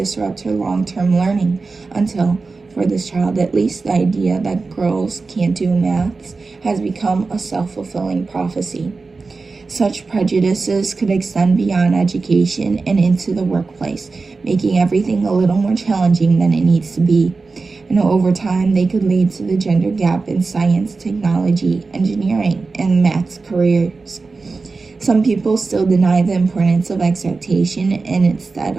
her long-term learning until, for this child at least, the idea that girls can't do maths has become a self-fulfilling prophecy. Such prejudices could extend beyond education and into the workplace, making everything a little more challenging than it needs to be. And over time, they could lead to the gender gap in science, technology, engineering, and maths careers. Some people still deny the importance of expectation and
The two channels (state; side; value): quieter; left; 4.0 dB